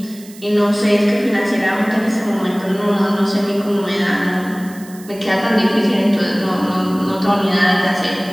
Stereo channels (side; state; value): right; noise; hiss, 21 dB below the sound